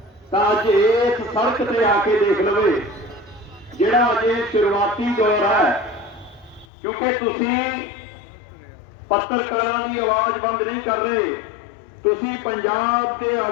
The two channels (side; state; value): right; drops out; at 6.7 s